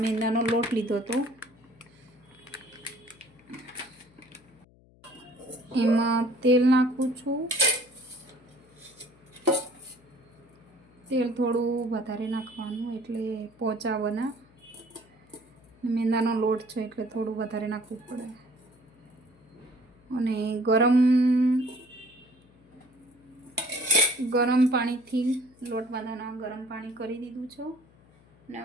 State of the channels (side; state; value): left; noise; hum, 28 dB below the sound